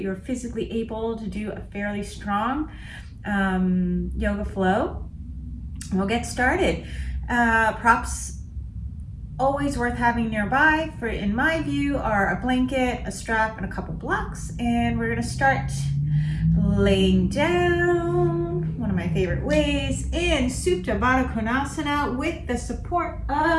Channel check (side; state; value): both; identical; correlation 1.00